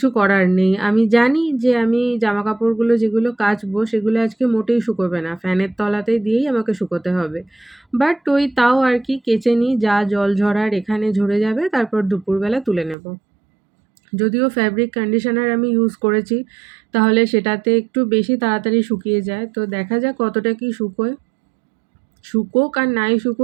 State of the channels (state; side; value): drops out; left; at 13.0 s